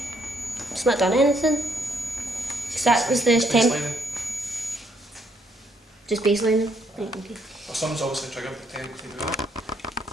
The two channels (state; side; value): normal; both; correlation 0.70